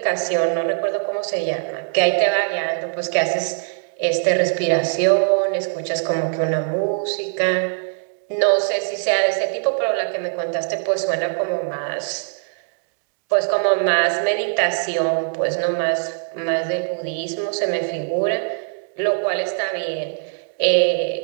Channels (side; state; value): left; silent; 64 dB below the other